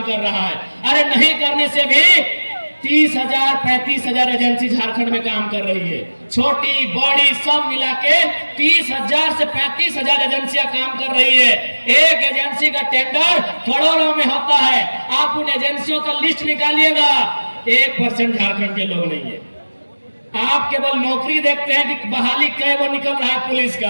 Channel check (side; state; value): both; inverted; correlation -1.00